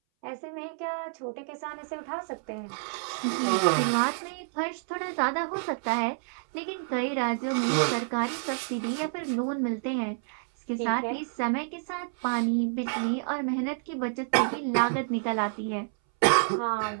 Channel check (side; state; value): left; silent; 59 dB below the other